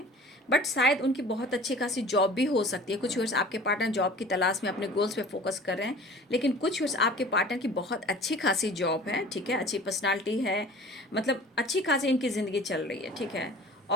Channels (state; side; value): normal; both; correlation 0.44